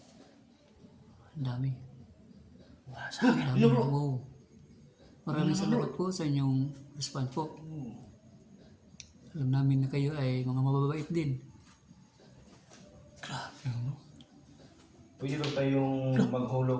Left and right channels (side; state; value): both; identical; correlation 1.00